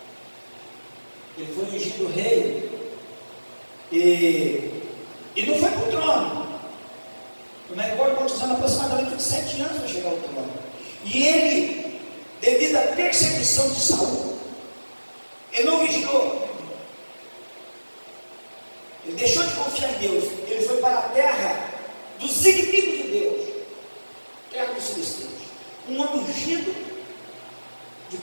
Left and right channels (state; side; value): inverted; both; correlation -1.00